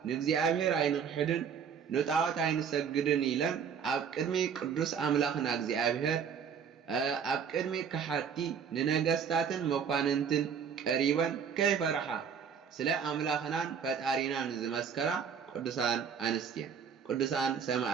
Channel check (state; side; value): quieter; left; 7.1 dB